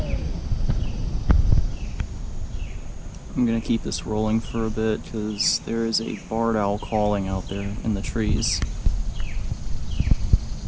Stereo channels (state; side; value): identical; both; correlation 1.00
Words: I'm gonna keep this rolling for a bit because there is a barred owl calling out there in the trees.